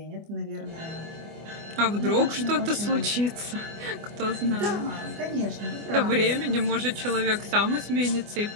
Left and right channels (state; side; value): late; left; 24 ms